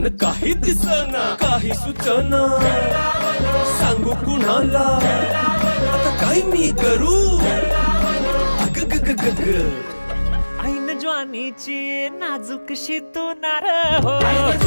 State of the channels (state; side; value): inverted; both; correlation -1.00